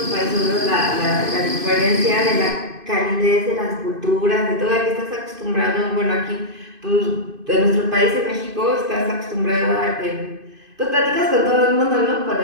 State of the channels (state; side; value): late; left; 2.5 ms